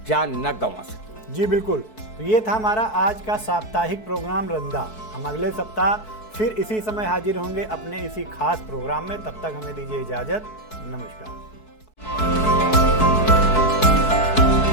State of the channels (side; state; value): right; late; 4.6 ms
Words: जान न गंवा सकें। जी बिल्कुल, तो ये था हमारा आज का साप्ताहिक प्रोग्राम रंदा। हम अगले सप्ताह फिर इसी समय हाजिर होंगे अपने इसी खास प्रोग्राम में। तब तक हमें दीजिए इजाज़त। नमस्कार।